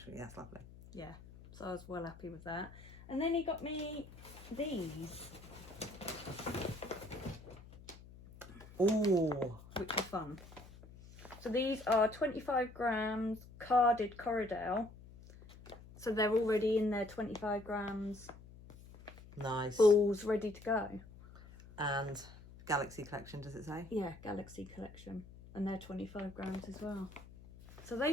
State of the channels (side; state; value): left; noise; hum, 18 dB below the sound